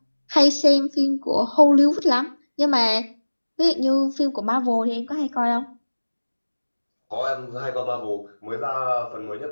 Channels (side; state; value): both; inverted; correlation -1.00